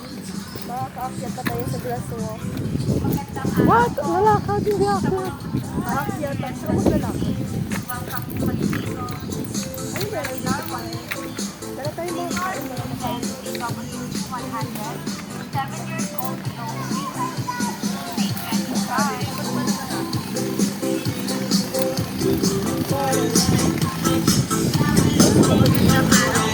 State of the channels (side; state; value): both; identical; correlation 1.00